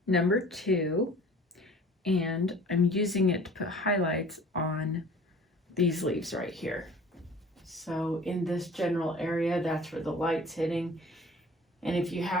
number 2, and I'm using it to put highlights on these leaves right here. So in this general area, that's where the light's hitting. And if you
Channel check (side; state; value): both; normal; correlation 0.47